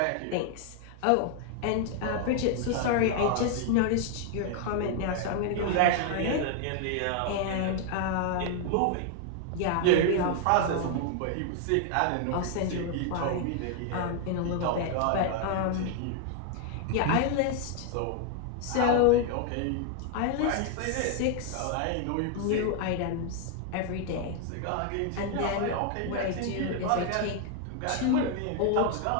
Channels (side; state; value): both; different; correlation 0.00